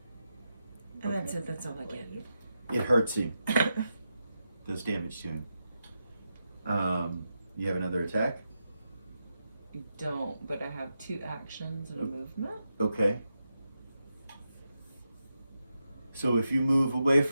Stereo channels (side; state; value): both; inverted; correlation -0.87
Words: And that's it, that's all I get. It hurts him. Does damage to him. You have another attack? I don't, but I have 2 actions and a movement. Okay. So if you move away